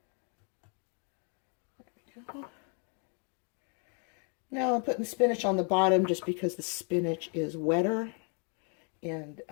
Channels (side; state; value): right; quieter; 39.4 dB